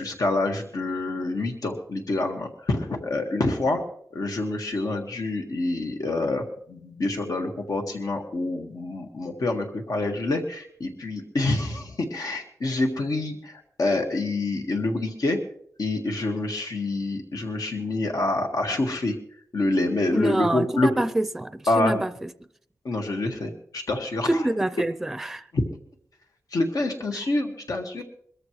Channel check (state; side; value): normal; both; correlation 0.83